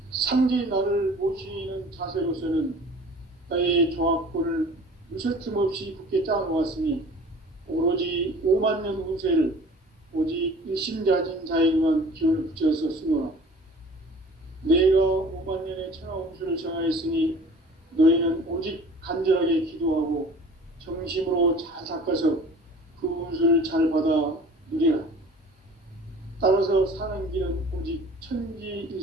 상제인 나를 모시는 자세로서는 나의 조합권을 무설틈 없이 굳게 짜놓았으니 오로지 5만 년 운세를 오직 일심자진 자에게만 기운을 붙여서 쓰노라. 내가 5만 년의 천하 운수를 정하였으니 너희는 오직 간절하게 기도하고 정심으로 잘 닦아서 그 운수를 잘 받아 누리라. 따라서 사는 길은 오직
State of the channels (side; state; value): both; normal; correlation 0.45